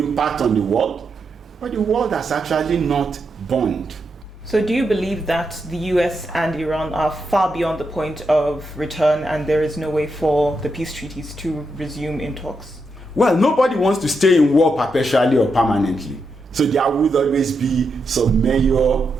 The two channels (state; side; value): normal; both; correlation 0.84